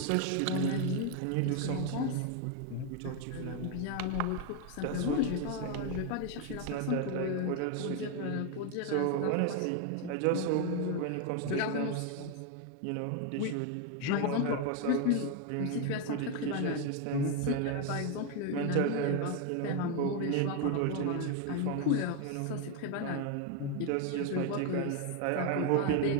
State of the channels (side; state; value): both; different; correlation 0.01